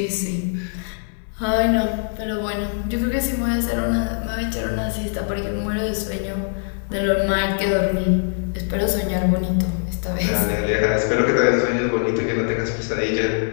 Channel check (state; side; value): silent; right; 62 dB below the other